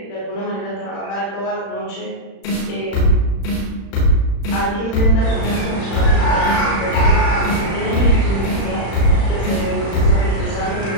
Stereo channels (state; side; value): late; right; 36 ms